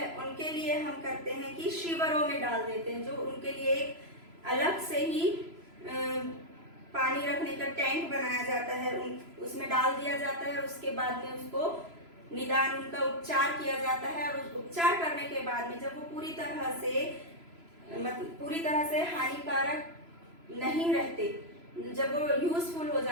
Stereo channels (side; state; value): left; late; 3.0 ms